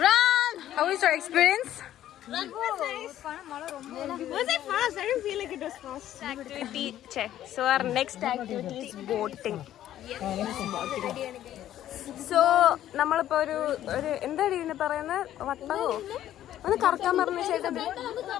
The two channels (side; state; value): right; quieter; 12.2 dB